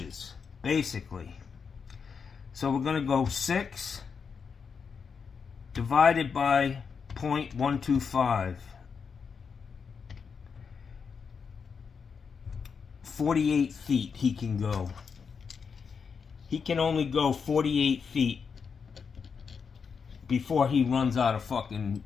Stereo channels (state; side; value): quieter; right; 6.0 dB